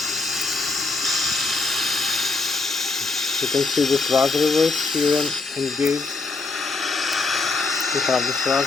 You can see the thrust reverse here engaged. We have the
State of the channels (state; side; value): quieter; right; 3.8 dB